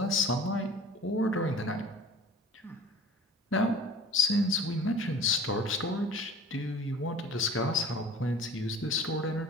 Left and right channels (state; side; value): normal; both; correlation 0.44